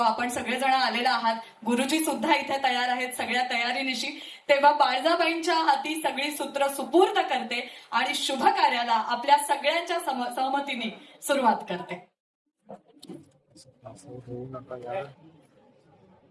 सगळेजण आलेला आहात, गुरुजी सुद्धा इथे तयार आहेत सगळ्या तयारीनिशी. तेव्हा बाळजाबाईंच्या हाती सगळी सूत्र सुपूर्द करते आणि शुभ कार्याला आपल्या सगळ्यांच्या सहमतीने सुरुवात करते.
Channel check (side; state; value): both; identical; correlation 1.00